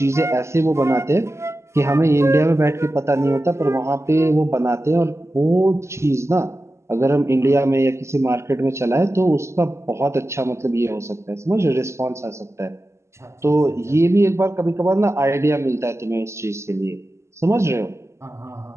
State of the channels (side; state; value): left; late; 0.13 ms